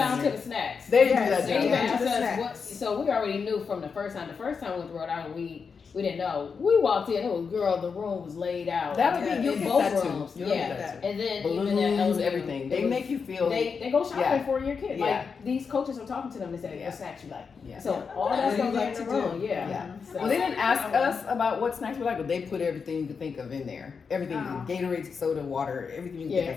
to the snacks. They Yes, do that. They they down do. asked the us snacks. so we already knew from the first time. The first time with Rhode Island, we didn't know. We walked in, the room was laid out. That'll Yeah. be you'll in get both that too. rooms. You'll Yeah. get that too. And then Balloons, even at LSU, everything. it They was- make you feel. They go shopping Yeah. for your kid. Yeah. Like these coaches are talking to them and say, Yeah. "What snacks you like?" Yeah. So all What that's do you gonna be like in to the do? room. Yeah. Yeah. So, Well, they didn't ask us about what snacks we like, but they put everything you could think of in there. Everything, Oh. Gatorade, soda, water, everything you can Yeah, think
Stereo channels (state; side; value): quieter; right; 5.6 dB